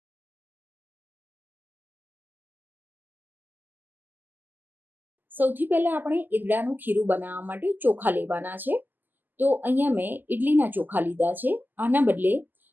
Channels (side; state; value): left; late; 0.088 ms